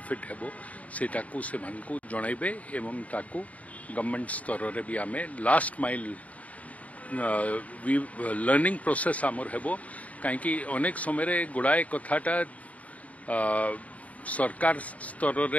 हेबो सेटा को से मान को जणाइबे एवं ताको गवर्नमेंट स्तर रे भी आमे लास्ट माइल लर्निंग प्रोसेस आमर हेबो काहेकि अनेक समय रे गुड़ाए कथाटा सरकार स्तर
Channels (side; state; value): right; late; 0.069 ms